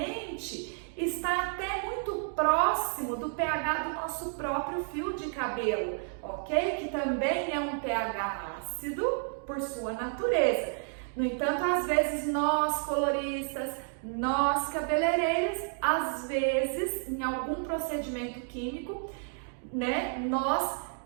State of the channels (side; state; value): left; silent; 57 dB below the other